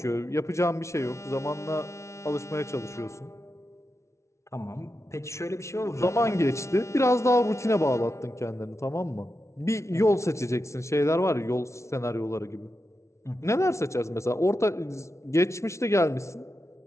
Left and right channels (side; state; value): right; late; 0.13 ms